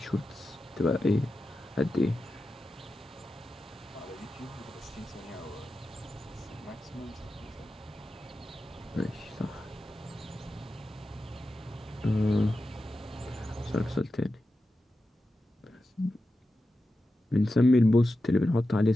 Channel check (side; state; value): both; normal; correlation 0.91